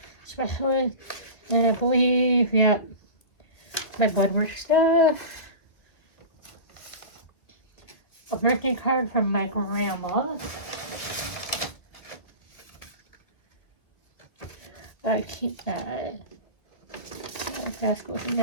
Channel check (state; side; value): late; right; 2.1 ms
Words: specialist. And I believe, yeah, my blood work stuff. A birthday card from my grandma. I keep that. That's goes in